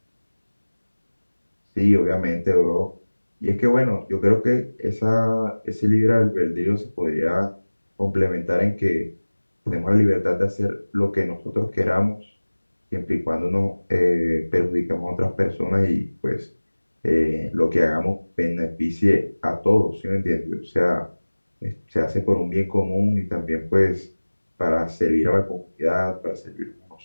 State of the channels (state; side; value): inverted; both; correlation -1.00